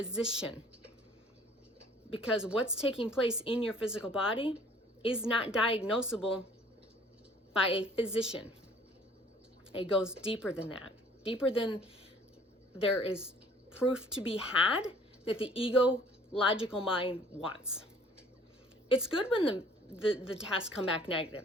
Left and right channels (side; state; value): both; normal; correlation 0.55